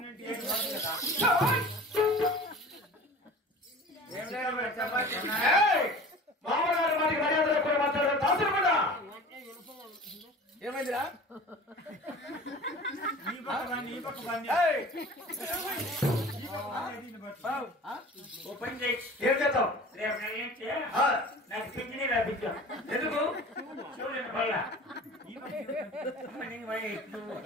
మామగారు వారికి మర్యాద లేకుండా మాట్లాడారు. దాసులు కూడా ఏమైందిరా? ఏం చేద్దాం? నాకు పింఛనీ రాపించాం. ఎందుకు? చూడండి వల్ల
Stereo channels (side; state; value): both; normal; correlation 0.40